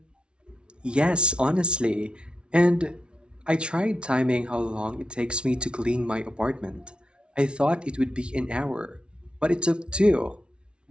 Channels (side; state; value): left; late; 0.057 ms